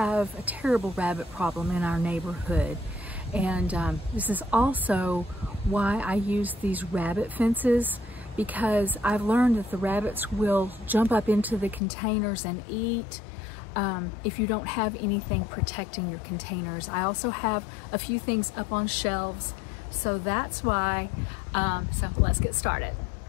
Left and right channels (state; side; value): drops out; right; at 11.8 s